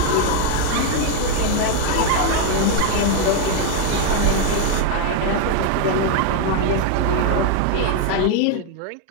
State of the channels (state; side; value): different; both; correlation 0.01